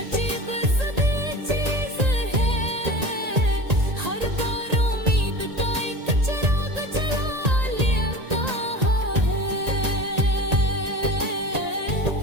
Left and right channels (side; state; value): left; late; 1.8 ms